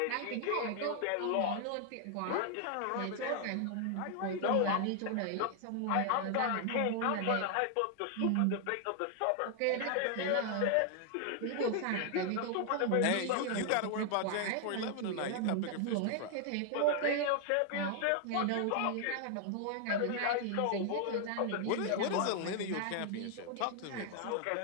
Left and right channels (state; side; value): different; both; correlation 0.00